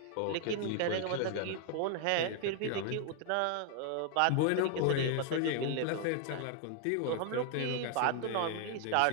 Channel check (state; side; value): different; both; correlation 0.00